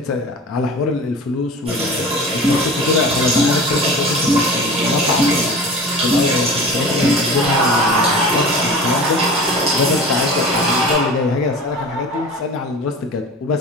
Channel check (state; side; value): normal; both; correlation 0.37